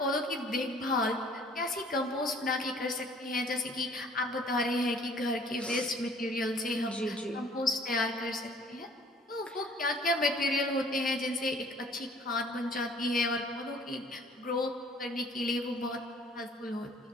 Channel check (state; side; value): normal; both; correlation 0.55